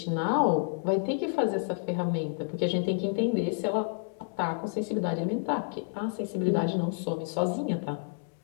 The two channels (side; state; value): right; silent; digital silence